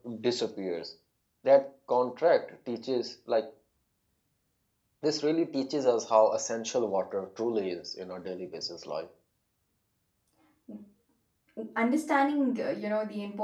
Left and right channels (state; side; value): identical; both; correlation 1.00